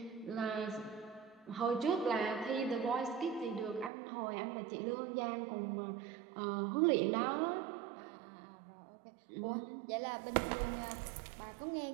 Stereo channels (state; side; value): drops out; left; at 3.9 s